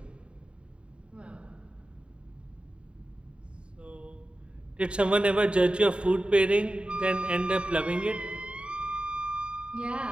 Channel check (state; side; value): late; left; 0.055 ms